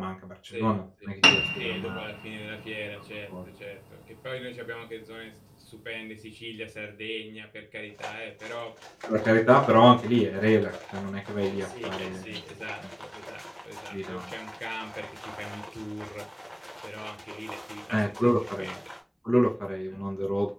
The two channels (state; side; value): identical; both; correlation 1.00